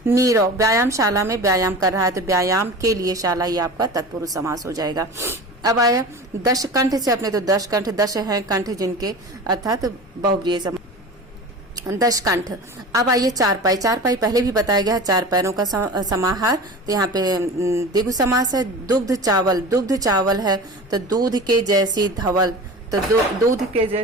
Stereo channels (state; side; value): normal; both; correlation 0.34